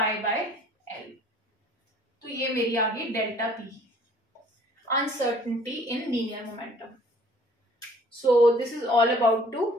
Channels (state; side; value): normal; both; correlation 0.55